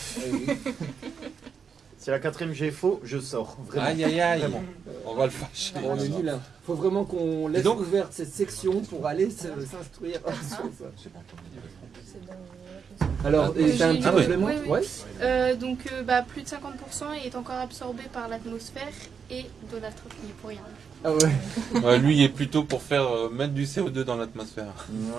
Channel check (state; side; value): quieter; left; 6.5 dB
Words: Eh oui. Si la 4e j'ai faux, je sors. Vraiment. Aïe, aïe, aïe. Vraiment. On va le fâcher. On est nul. Hein. Faut vraiment qu'on laisse donc ouverte cette section pour aller s'instruire sur ça. Alors, et t'as un petit Ah ouais. complément? Oui, oui. Ouais. Donc plus de 50% est encore absorbé par l'atmosphère et Donald Trump n'y est pour rien. Ah ouais. Ouais, lui, il est plutôt pour faire mettre du CO2 dans l'atmosphère.